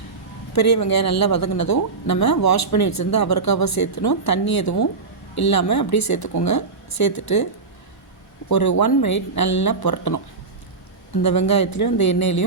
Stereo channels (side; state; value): left; quieter; 4.3 dB